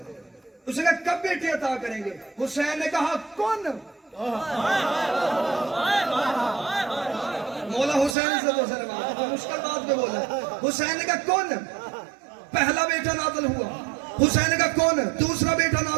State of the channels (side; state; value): left; drops out; at 8.2 s